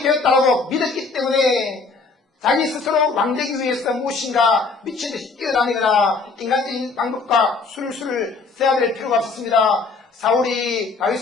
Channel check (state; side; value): quieter; right; 4.2 dB